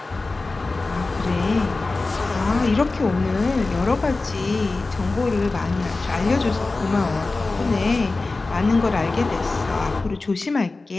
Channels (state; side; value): quieter; right; 3.5 dB